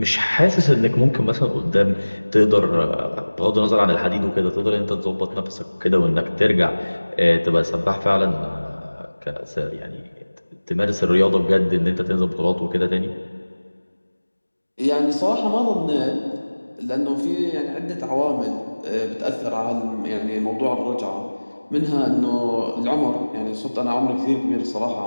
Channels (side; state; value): both; inverted; correlation -1.00